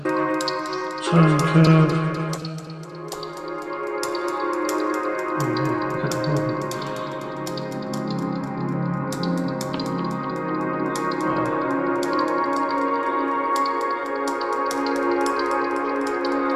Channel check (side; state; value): both; identical; correlation 1.00